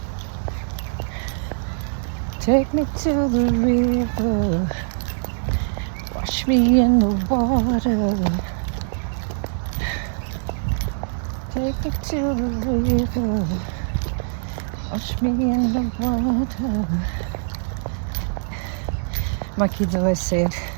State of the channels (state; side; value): silent; left; digital silence